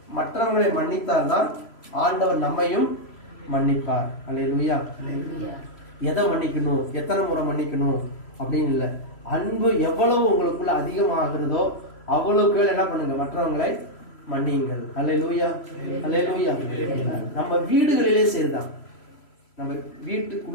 மற்றவங்களை மன்னித்தால்தான் ஆண்டவர் நம்மையும் மன்னிப்பார். அல்லேலூயா. எதை மன்னிக்கணும், எத்தனை முறை மன்னிக்கணும் அப்படின்னு இல்லை, அன்பு எவ்வளவு உங்களுக்குள்ள அதிகமாகிறதோ அவ்வளவுக்கு என்ன பண்ணுங்க, மற்றவங்களை மன்னியுங்கள். அல்லேலூயா, அல்லேலூயா. நம்ம வீடுகளிலே சரிதான். நம்ம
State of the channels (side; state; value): right; late; 3.0 ms